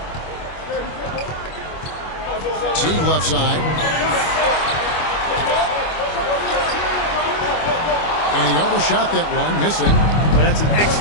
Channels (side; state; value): right; late; 25 ms